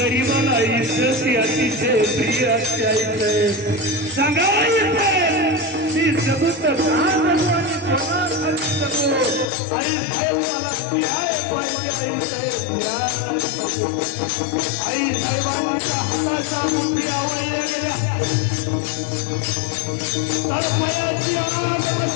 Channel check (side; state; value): right; drops out; at 9.5 s